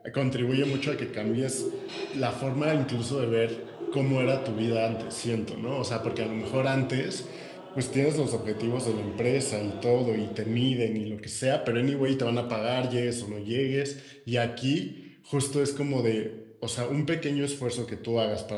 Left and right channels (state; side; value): identical; both; correlation 1.00